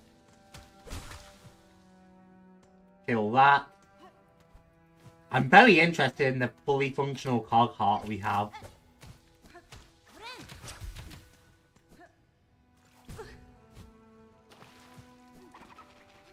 Kill that. I'm very interested in the fully functional cog heart we have.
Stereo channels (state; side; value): identical; both; correlation 1.00